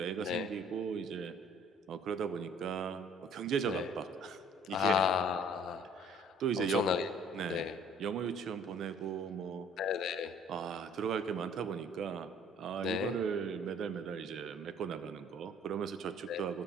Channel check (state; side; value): normal; both; correlation 0.55